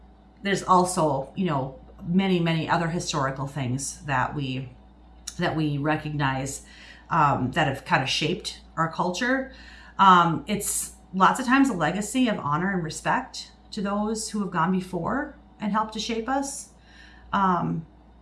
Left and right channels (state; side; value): identical; both; correlation 1.00